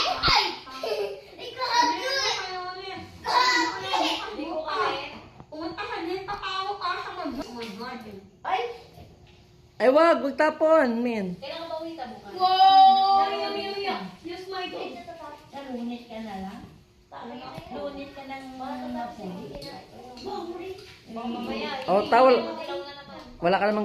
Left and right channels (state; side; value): identical; both; correlation 1.00